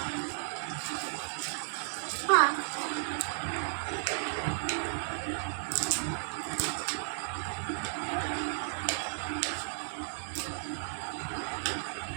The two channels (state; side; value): silent; left; digital silence